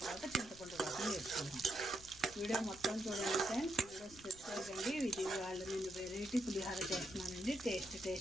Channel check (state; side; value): noise; left; rumble, 19 dB below the sound